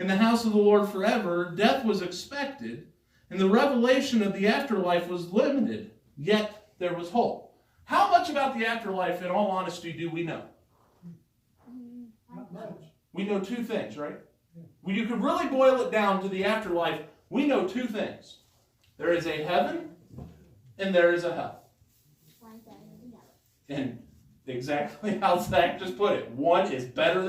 the house of the Lord forever. Death was expected, and the revelation of the afterlife was limited, yet there was hope. How much about the afterlife, in all honesty, do we know? Not much. We know two things, right? When you could really boil it down to the afterlife, we know two things. There is a heaven, and there is a hell. And exactly how Zach just put it, one is better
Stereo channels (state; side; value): identical; both; correlation 1.00